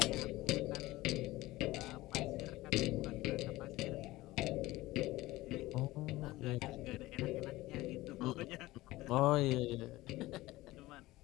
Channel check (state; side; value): quieter; right; 18.4 dB